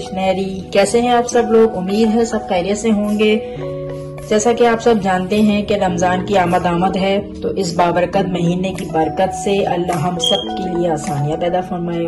कैसे हैं आप सब लोग? उम्मीद है सब खैरियत से होंगे। जैसा कि आप सब जानते हैं कि रमजान की आमद है, तो इस बाबरकत महीने की बरकत से अल्लाह हम सब के लिए आसानियां पैदा फरमाए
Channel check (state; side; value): identical; both; correlation 1.00